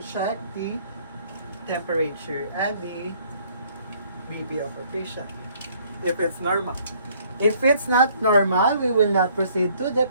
check the temperature and the BP of our patient, if it's normal. If it's not normal, we will not proceed to the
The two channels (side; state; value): both; inverted; correlation -0.61